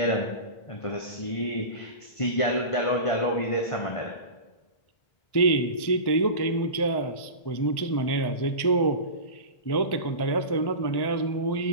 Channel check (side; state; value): right; late; 1.1 ms